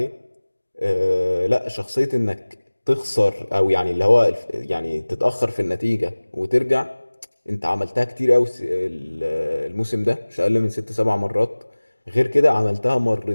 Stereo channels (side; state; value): both; inverted; correlation -1.00